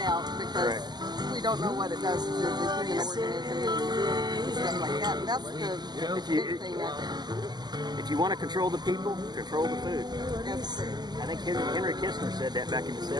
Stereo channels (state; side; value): late; left; 0.20 ms